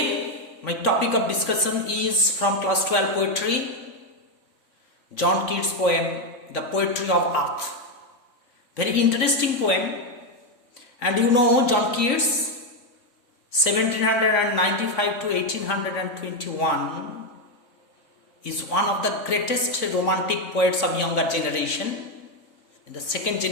my topic of discussion is from class 12 poetry, John Keats poem The Poetry of Earth. Very interesting poem, and you know John Keats 1795 to 1821 is one of the greatest romantic poets of younger generation, in the second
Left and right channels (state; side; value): late; right; 3.5 ms